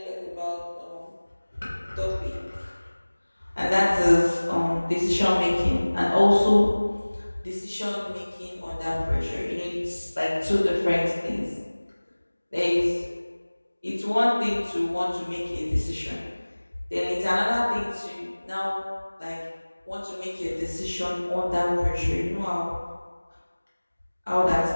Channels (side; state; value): both; inverted; correlation -1.00